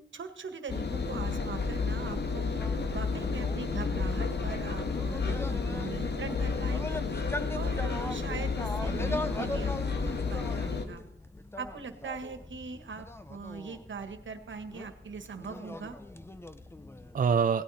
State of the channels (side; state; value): both; normal; correlation 0.60